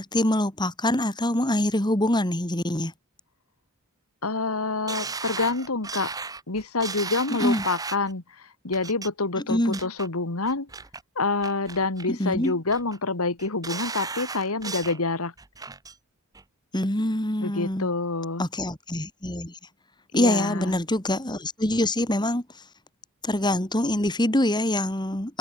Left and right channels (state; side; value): normal; both; correlation 0.36